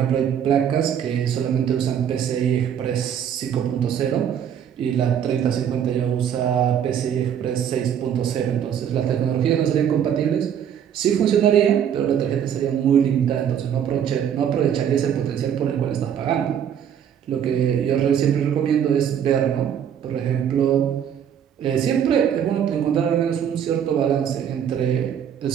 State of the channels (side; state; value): left; quieter; 8.9 dB